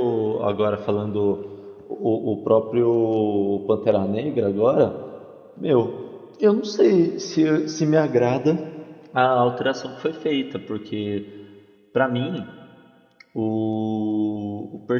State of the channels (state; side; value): identical; both; correlation 1.00